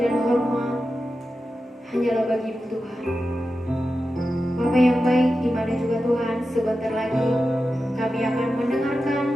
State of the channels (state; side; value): normal; both; correlation 0.91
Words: hormat hanyalah bagi-Mu Tuhan. Bapa yang baik, di mana juga Tuhan, sebentar lagi kami akan mendengarkan